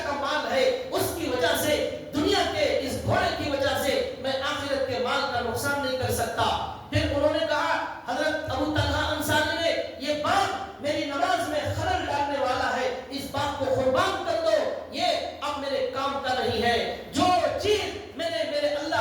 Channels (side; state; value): both; identical; correlation 1.00